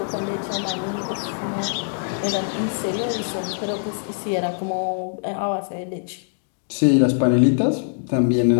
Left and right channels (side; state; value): right; silent; digital silence